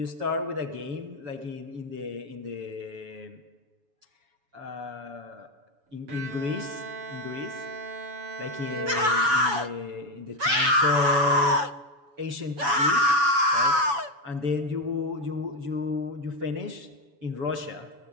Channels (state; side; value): late; left; 7.1 ms